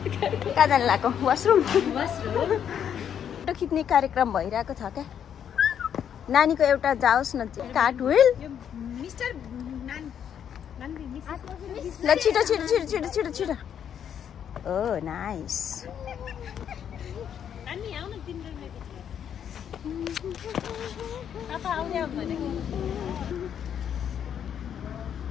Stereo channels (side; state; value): right; quieter; 8.8 dB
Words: कहाँ जानु लाग्यो? वासरुम। फोटो खिच्ने कार्यक्रम भइरहेको छ क्या। नानीको एउटा जाओस् न कार्ट व्हिल। ल छिटो छिटो छिटो छिटो छिटो छिटो। ओ नाइस।